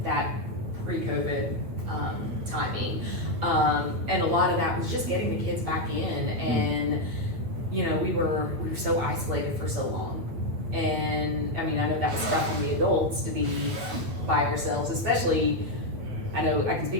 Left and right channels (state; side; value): late; left; 8.9 ms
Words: that pre-COVID timing, and a lot of that was just getting the kids back in, and we were so isolated for so long, and I mean I know that was tough on the adults to be by ourselves, especially. I know I can